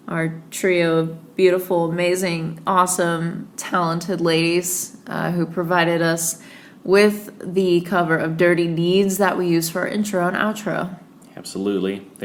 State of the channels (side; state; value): both; identical; correlation 1.00